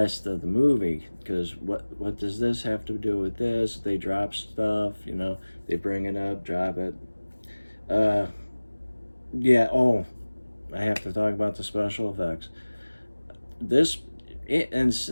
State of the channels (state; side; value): inverted; both; correlation -1.00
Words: of the movie. Because what does this have to do with this? They drop stuff, you know, they bring it up, drop it. Uh, yeah. Oh, I have to talk about the special effects. This in